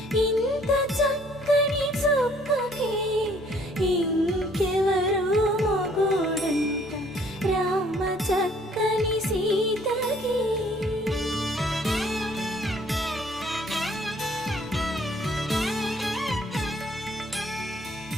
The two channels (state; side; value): normal; both; correlation 0.60